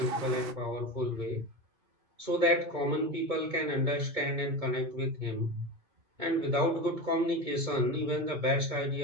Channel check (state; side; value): late; left; 2.2 ms